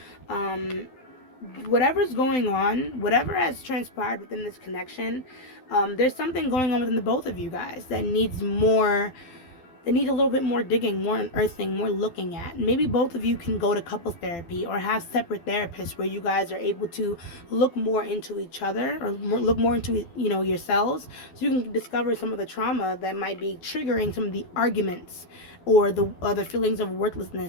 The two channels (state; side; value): late; right; 12 ms